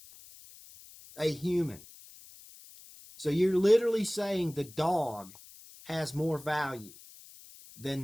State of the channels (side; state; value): left; noise; hiss, 20 dB below the sound